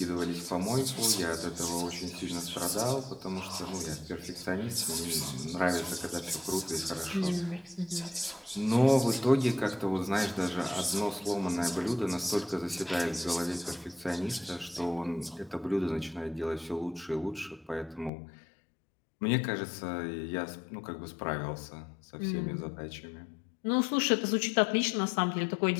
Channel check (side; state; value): right; drops out; at 18.1 s